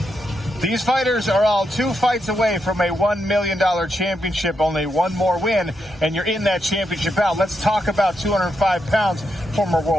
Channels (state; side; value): normal; both; correlation 0.82